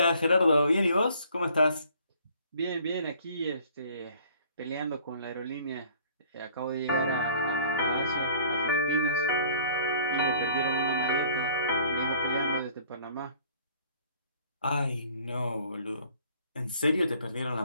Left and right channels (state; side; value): inverted; both; correlation -0.56